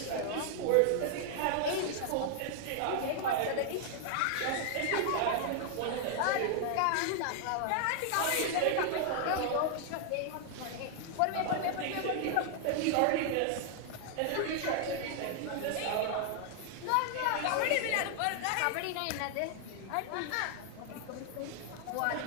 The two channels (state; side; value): different; both; correlation 0.00